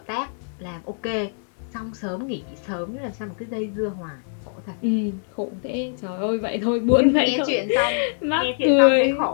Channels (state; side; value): silent; right; digital silence